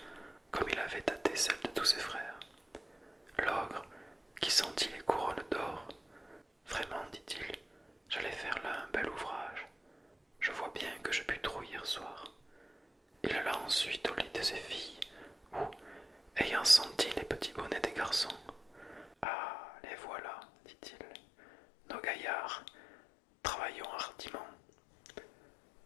tous ses frères. L'ogre, qui sentit les couronnes d'or, vraiment, dit-il, j'allais faire là un bel ouvrage. Je vois bien que je pus trop hier soir. Il alla ensuite au lit de ses filles, où, ayant senti les petits bonnets des garçons, ah, les voilà, dit-il, nos gaillards, travaillons hardiment.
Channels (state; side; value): drops out; right; at 19.2 s